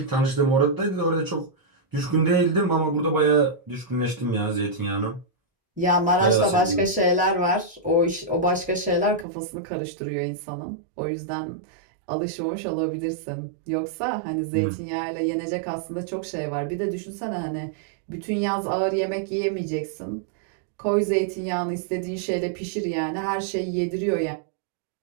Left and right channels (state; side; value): drops out; left; at 9.2 s